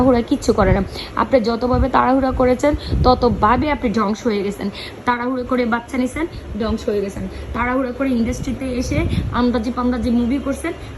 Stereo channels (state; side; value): identical; both; correlation 1.00